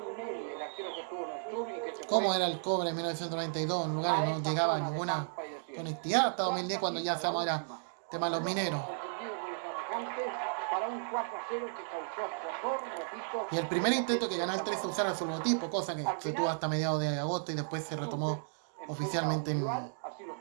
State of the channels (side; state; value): left; silent; digital silence